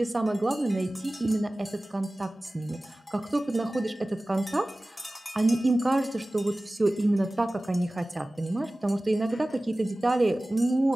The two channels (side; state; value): both; normal; correlation 0.97